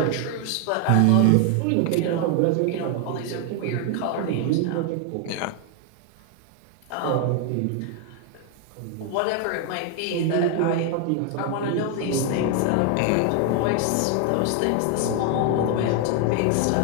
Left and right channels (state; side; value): different; both; correlation 0.01